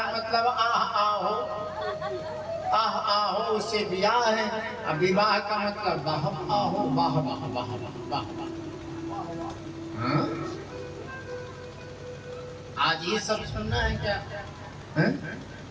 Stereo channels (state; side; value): identical; both; correlation 1.00